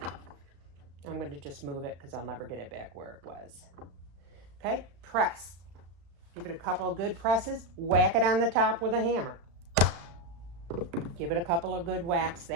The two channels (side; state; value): left; late; 34 ms